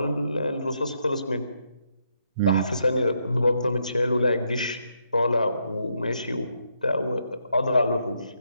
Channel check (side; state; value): both; inverted; correlation -0.78